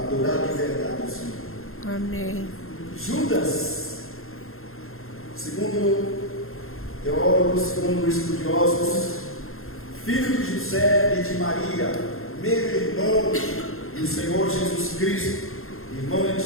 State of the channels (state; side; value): late; right; 0.61 ms